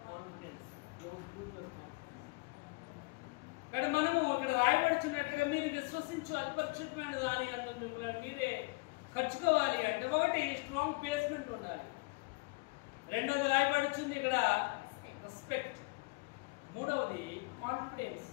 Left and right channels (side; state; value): right; quieter; 27.4 dB